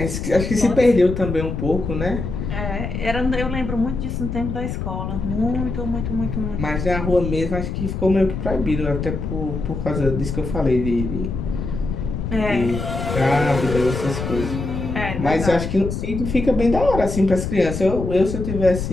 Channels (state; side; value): noise; left; rumble, 4 dB below the sound